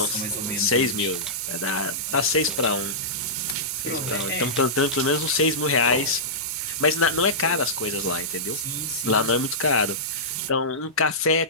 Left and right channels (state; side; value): normal; both; correlation -0.15